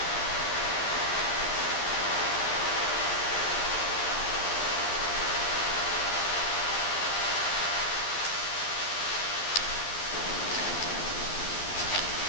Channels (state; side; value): late; right; 11 ms